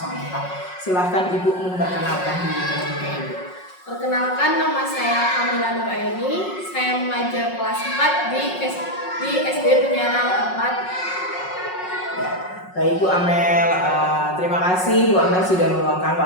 Silahkan Ibu memperkenalkan diri terlebih dahulu. Perkenalkan, nama saya Kamila Nuraini. Saya mengajar kelas 4 di SD Penyarang 4. Baik Bu Amel, terima kasih Bu Amel sudah meluangkan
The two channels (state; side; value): late; right; 5.5 ms